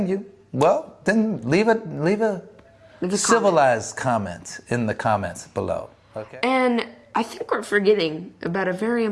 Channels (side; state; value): both; identical; correlation 1.00